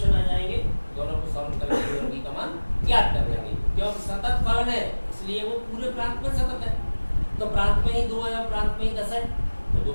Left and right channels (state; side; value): inverted; both; correlation -1.00